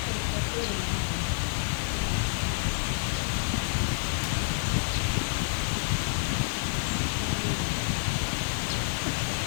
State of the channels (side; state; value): right; silent; digital silence